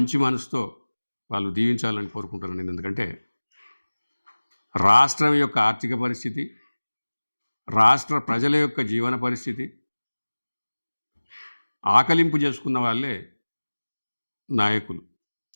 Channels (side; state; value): both; inverted; correlation -1.00